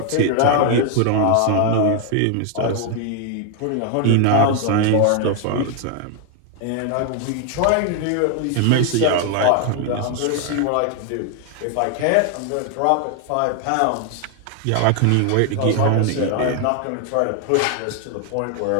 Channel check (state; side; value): different; both; correlation 0.00